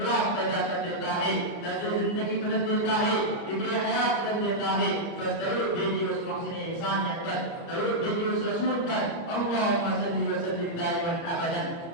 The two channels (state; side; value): late; right; 29 ms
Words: پیدا کر دیتا ہے، طرز زندگی بدل دیتا ہے، فکر حیات بدل دیتا ہے. بس درود بھیجیے اس محسن انسانیت پر، درود بھیجیے اس رسول پر. اللہم صلی وسلم دائما ابدا